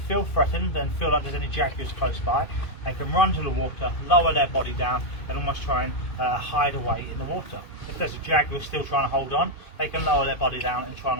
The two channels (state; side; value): late; right; 2.5 ms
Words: threatened and feel like there's any jaguars close by, they can run to the water, lower their body down, and almost try and hide away in the water. If there's a jaguar still trying to hold on, they can lower their body down and try